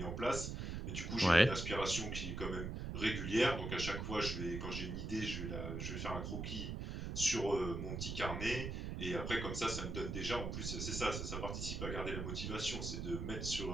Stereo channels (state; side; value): noise; right; rumble, 4 dB below the sound